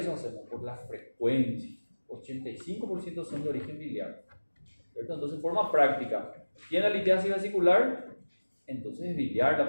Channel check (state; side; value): inverted; both; correlation -1.00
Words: hacemos? Por la frecuencia. 85% son de origen biliar. ¿Cierto? Entonces, en forma práctica, tiene litiasis vesicular, entonces es biliar la